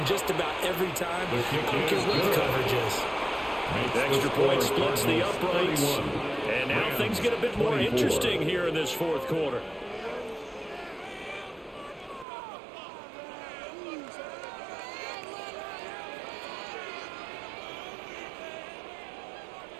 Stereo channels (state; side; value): drops out; left; at 12.2 s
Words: just about every time. I don't care what the coverage is. The extra point splits the uprights, And now things get a bit more interesting here in this fourth quarter.